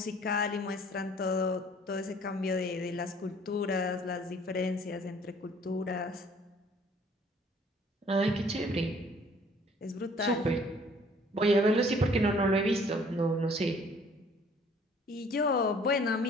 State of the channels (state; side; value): normal; both; correlation 0.56